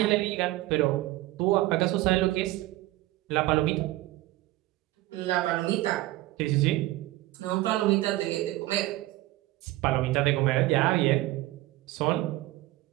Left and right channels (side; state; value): left; quieter; 17.5 dB